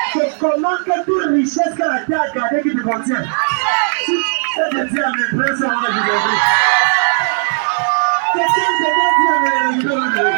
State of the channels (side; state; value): left; silent; 59 dB below the other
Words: Je commande que toute richesse que la terre a gardée qui te contient. C'est de dire à mes frères, ça va vous aider. Quelqu'un dit à mes frères.